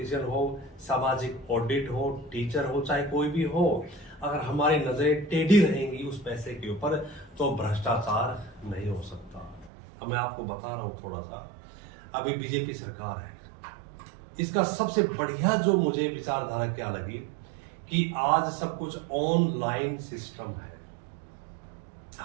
हो, सामाजिक ऑडिट हो, टीचर हो, चाहे कोई भी हो। अगर हमारी नजरें टेढ़ी रहेंगी उस पैसे के ऊपर तो भ्रष्टाचार नहीं हो सकता। अब मैं आपको बता रहा हूं थोड़ा सा, अभी बीजेपी सरकार है, इसका सबसे बढ़िया जो मुझे विचारधारा क्या लगी कि आज सब कुछ ऑनलाइन सिस्टम है।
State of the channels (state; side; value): drops out; left; at 9.7 s